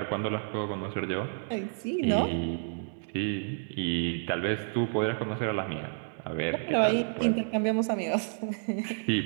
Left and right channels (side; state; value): left; silent; digital silence